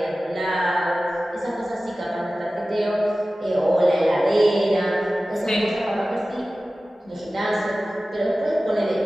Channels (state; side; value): normal; both; correlation 0.96